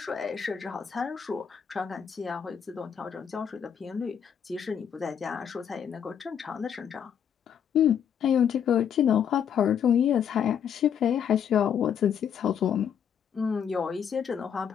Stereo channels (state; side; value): quieter; right; 8.2 dB